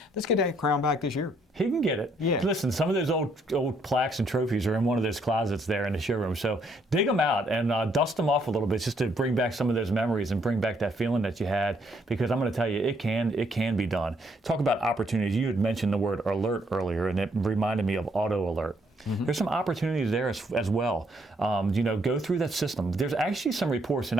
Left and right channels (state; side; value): normal; both; correlation 0.70